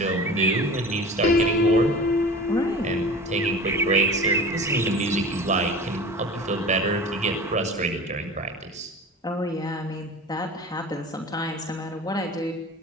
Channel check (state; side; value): normal; both; correlation 0.37